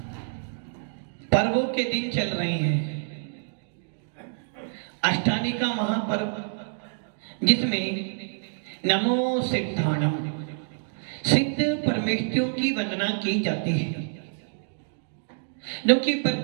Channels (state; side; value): silent; left; digital silence